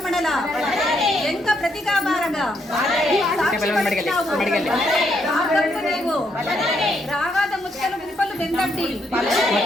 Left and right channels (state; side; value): normal; both; correlation 0.75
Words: ఎంక ప్రతిగా బారగా రాగాద ముచ్చలు విపలు దెందండి